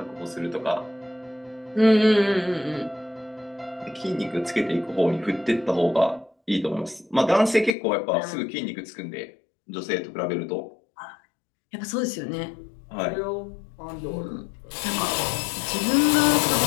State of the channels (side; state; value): right; drops out; at 7.8 s